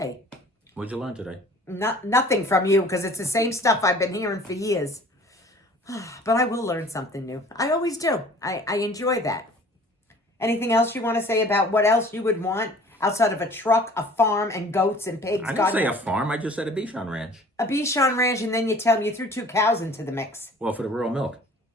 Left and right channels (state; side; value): normal; both; correlation 0.50